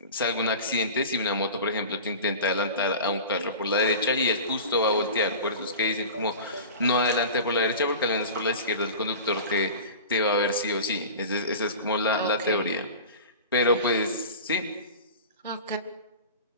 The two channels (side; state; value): both; inverted; correlation -0.34